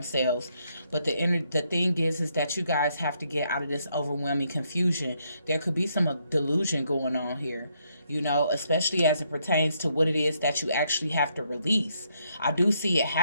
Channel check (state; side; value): inverted; both; correlation -0.74